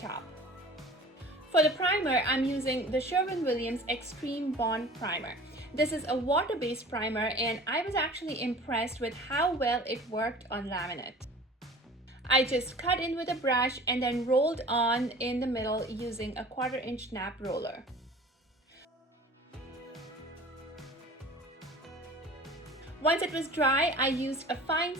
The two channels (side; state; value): both; normal; correlation 0.43